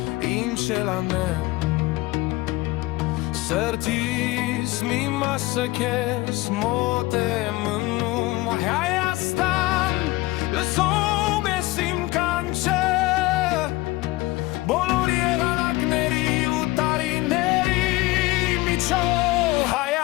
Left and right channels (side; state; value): right; quieter; 20.2 dB